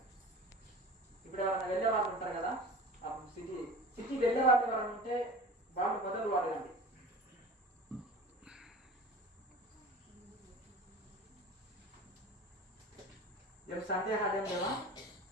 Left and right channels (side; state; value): both; normal; correlation 0.38